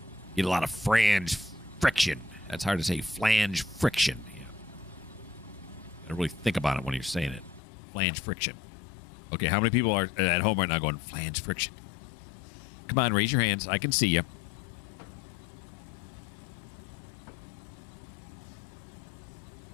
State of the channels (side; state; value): right; drops out; at 7.6 s